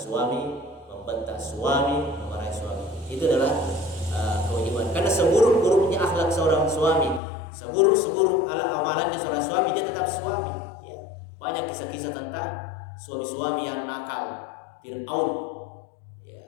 membentak suami, memarahi suami. Itu adalah kewajiban. Karena seburuk-buruknya akhlak seorang suami, seburuk-seburuk amalannya seorang suami, dia tetap suami. Ya. Banyak kisah-kisah tentang suami-suami yang nakal, Fir'aun. Ya,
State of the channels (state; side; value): drops out; right; at 7.2 s